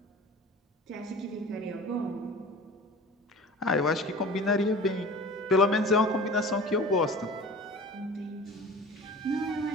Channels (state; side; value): normal; both; correlation 0.40